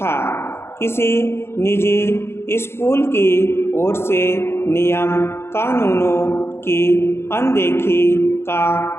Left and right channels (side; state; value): right; late; 0.12 ms